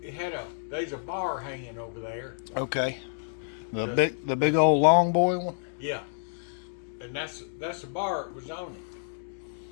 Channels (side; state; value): right; silent; digital silence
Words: It had there's a bar hanging over there. Okay. The big old long boy one. Yeah. And that's the bar it was on it.